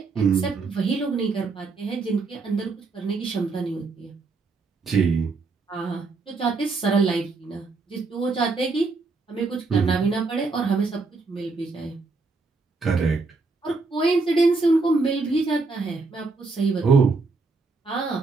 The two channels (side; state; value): left; quieter; 4.0 dB